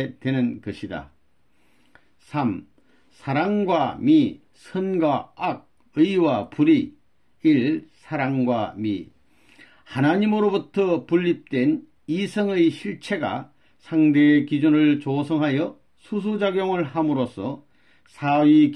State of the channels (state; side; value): identical; both; correlation 1.00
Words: 되는 것이다. 3. 사랑과 미, 선과 악, 의와 불의. 1. 사랑과 미. 하나님으로부터 분립된 이성의 실체가 상대의 기준을 조성하여 수수작용을 함으로써 사위